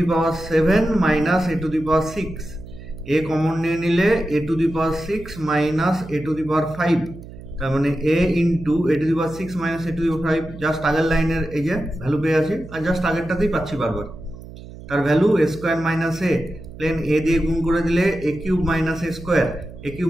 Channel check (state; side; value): noise; right; hum, 15 dB below the sound